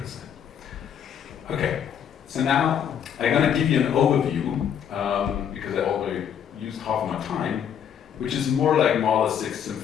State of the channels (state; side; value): quieter; right; 8.7 dB